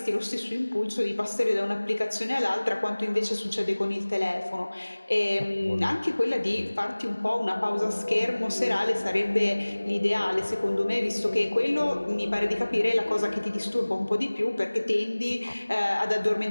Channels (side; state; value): both; inverted; correlation -1.00